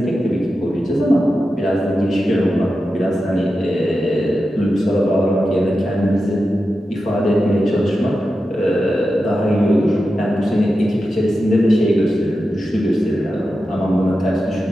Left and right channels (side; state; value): both; normal; correlation 0.91